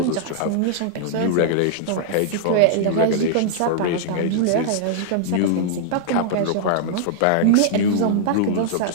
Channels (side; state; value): both; different; correlation -0.01